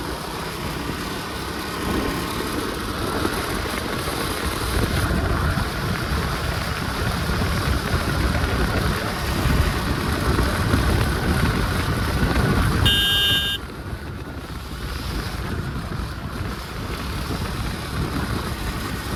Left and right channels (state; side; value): identical; both; correlation 1.00